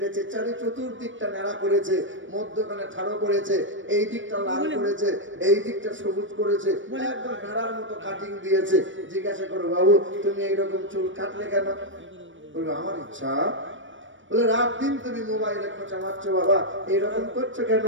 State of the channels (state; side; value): late; left; 0.56 ms